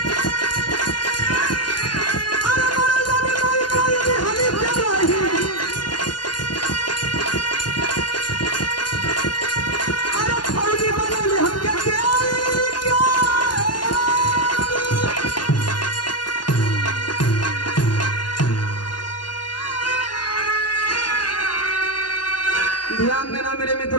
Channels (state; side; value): late; right; 0.71 ms